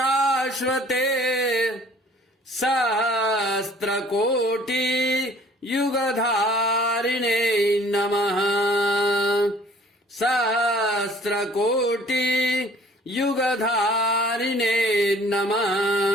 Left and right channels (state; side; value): normal; both; correlation 0.54